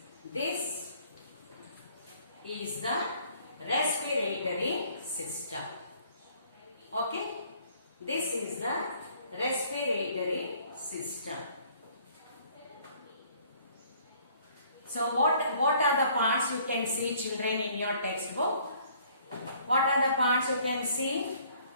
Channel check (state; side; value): inverted; both; correlation -0.59